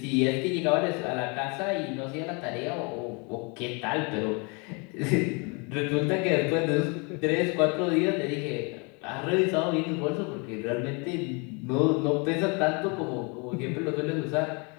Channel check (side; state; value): right; quieter; 32.0 dB